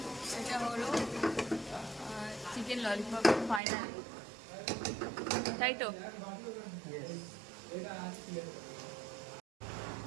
এটা হলো চিকেন ললিপপ ফাইনাল, তাই তো?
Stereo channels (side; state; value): left; drops out; at 3.6 s